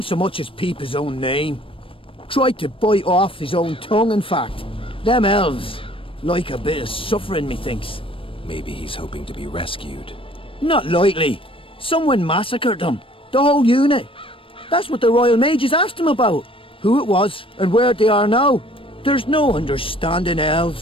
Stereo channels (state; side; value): late; right; 0.26 ms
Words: so much as peep his own name. Tried to bite off his own tongue, in fact. Them elves like a bit of suffering, methinks. Maybe he's hoping to be rescued. Not likely. Someone massacred them. The whole unit. That's what the Royal Mages asked him about. Who it was, and where they are now. There's no understanding